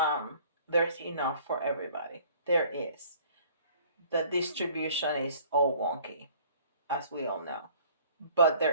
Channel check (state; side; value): inverted; both; correlation -0.53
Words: enough for everybody. There is. The distribution is all wonky, as we all know, but